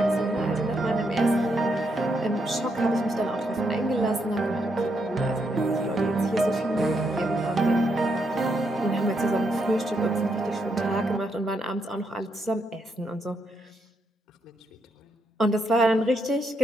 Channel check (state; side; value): normal; both; correlation 0.79